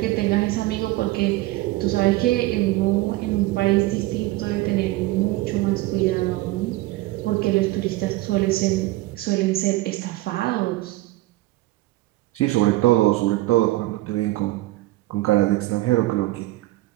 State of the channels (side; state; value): left; quieter; 18.6 dB